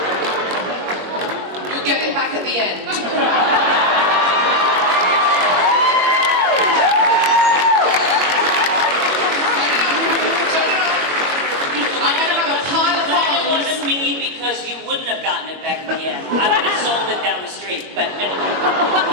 You get it back at the end. Wouldn't have gotten it back in the end. I would have sold it down the street, but...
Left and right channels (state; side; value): late; left; 22 ms